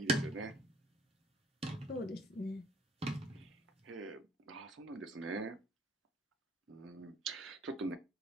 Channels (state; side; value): normal; both; correlation 0.58